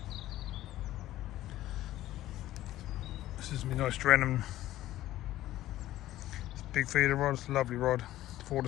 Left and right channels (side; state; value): right; quieter; 14.6 dB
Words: this is me nice Drenham. It's a big feeder rod, it's a lovely rod, 4 to